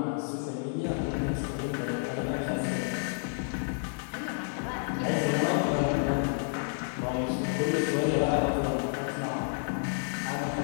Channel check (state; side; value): silent; right; digital silence